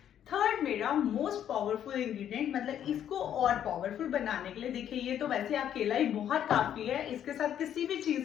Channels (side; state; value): right; quieter; 10.0 dB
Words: थर्ड मेरा मोस्ट पावरफुल इंग्रेडिएंट, मतलब इसको और पावरफुल बनाने के लिए, देखिए ये तो वैसे अकेला ही बहुत काफी है, इसके साथ किसी भी